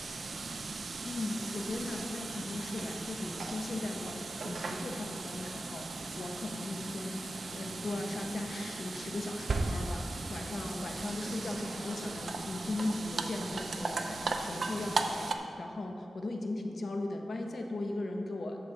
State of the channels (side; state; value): both; normal; correlation 0.91